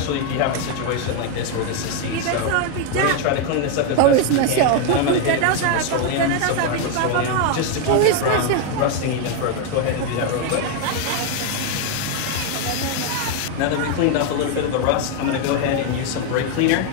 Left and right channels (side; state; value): both; different; correlation 0.01